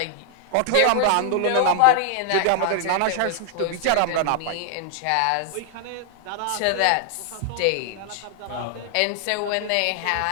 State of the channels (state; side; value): different; both; correlation 0.00